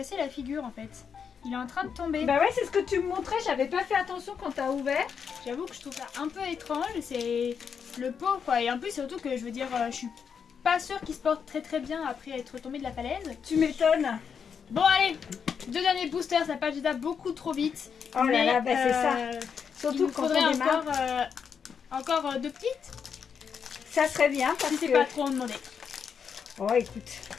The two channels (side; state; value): right; quieter; 6.8 dB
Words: la figure en fait. Il est en train de tomber. Bah ouais, c'est ce que tu me montrais, j'avais pas fait attention quand t'as ouvert. J'avoue que je trouve ça un peu étrange. C'est le pauvre quoi. Et en plus surtout que je veux dire, je suis pas sûre qu'il se porte très bien après être tombé de la falaise. Tu m'étonnes. Bon allez, 2 derniers boosters, ça passe déjà beaucoup trop vite. Oh là là, bah c'est ça. Il Surtout nous quand faudrait on démarre. encore 2 petites, Ça serait bien parce si c'est que... pas trop en demander. Oh écoute,